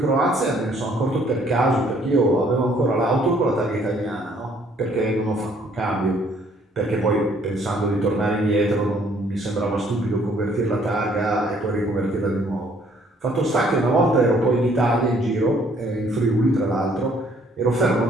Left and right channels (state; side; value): normal; both; correlation 0.63